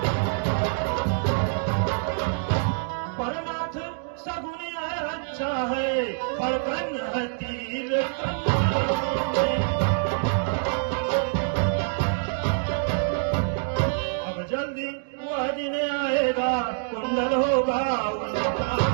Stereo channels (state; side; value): silent; left; digital silence